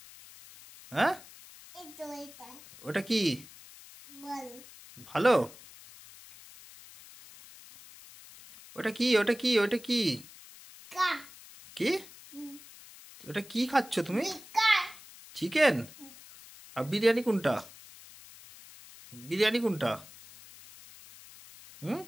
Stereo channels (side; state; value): left; noise; hiss, 19 dB below the sound